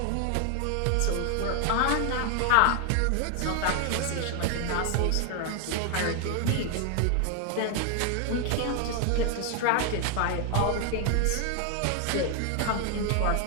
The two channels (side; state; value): both; different; correlation 0.00